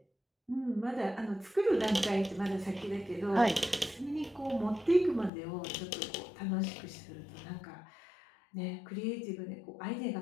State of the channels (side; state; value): right; drops out; at 5.3 s